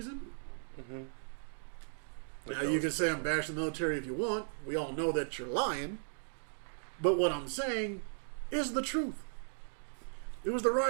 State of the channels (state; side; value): silent; left; digital silence